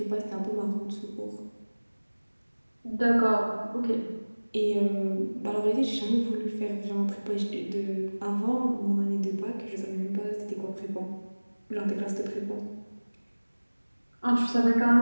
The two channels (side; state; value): both; inverted; correlation -1.00